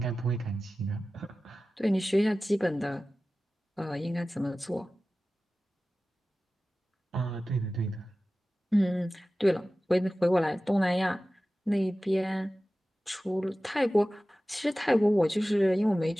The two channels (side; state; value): both; normal; correlation 0.96